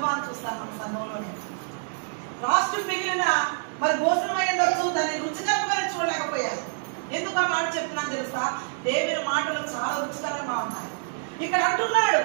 చూస్తాను మన సంఘంలోనే. లాస్ట్ మిగిలిన మరి భోజనం అయ్యిండొచ్చు, దాన్ని రుచికరంగా చూడలేకపోయారు. ఎందుకు ఆ మాట చెప్తున్నాను తెలుసా? దేవుని మాటలు చాలా రుచికరంగా ఉన్నాయి. ఇక్కడ అంటున్నాడు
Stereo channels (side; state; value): left; silent; digital silence